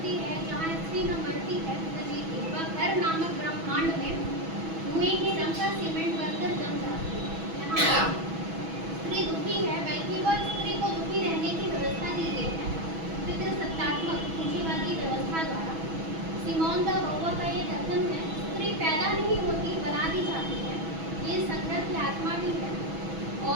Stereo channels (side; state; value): left; late; 6.1 ms